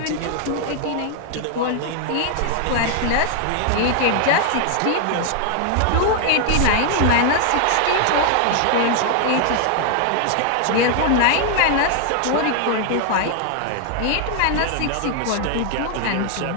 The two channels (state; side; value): different; both; correlation 0.00